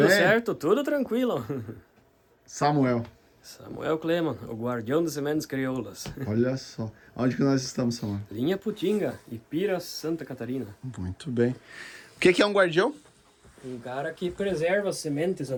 bem? certo? Tudo tranquilo. Samuel, Samuel Cleman, o guardião das sementes crioulas. olha só. Onde que nós estamos, Samuel? Linha Putinga, Ipira, Santa Catarina. Muito bem. O que é um guardião? Um cara que preserva sementes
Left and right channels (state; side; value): identical; both; correlation 1.00